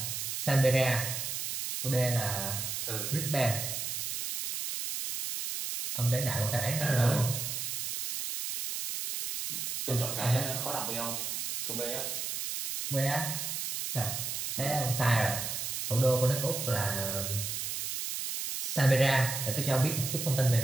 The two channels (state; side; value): noise; right; hiss, 3 dB below the sound